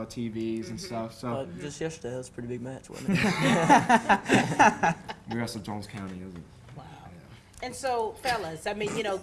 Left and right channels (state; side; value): identical; both; correlation 1.00